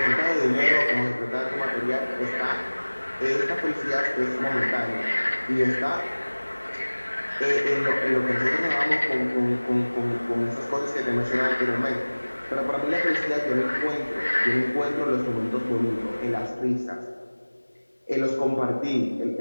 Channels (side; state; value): both; inverted; correlation -1.00